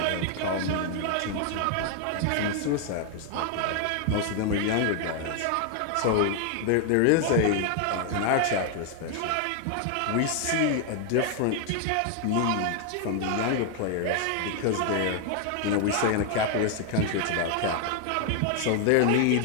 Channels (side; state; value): both; different; correlation 0.00